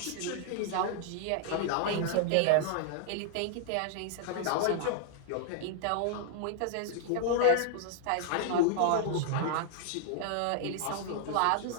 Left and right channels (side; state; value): both; different; correlation -0.01